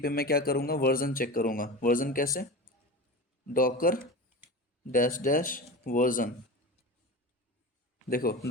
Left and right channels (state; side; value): normal; both; correlation 0.28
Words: पे मैं क्या करूँगा? वर्जन चेक करूँगा। वर्जन कैसे? Docker dash dash version. देखो,